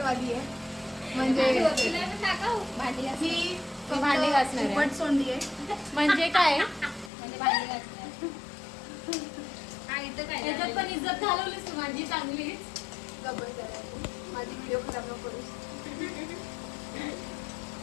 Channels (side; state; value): right; drops out; at 7.1 s